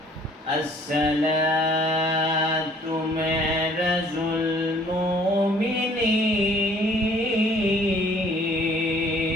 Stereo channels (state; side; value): normal; both; correlation 0.57